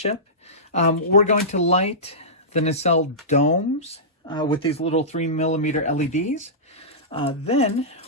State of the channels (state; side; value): normal; both; correlation -0.18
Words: We're going to light the nacelle domes with these little 3mm LEDs. Then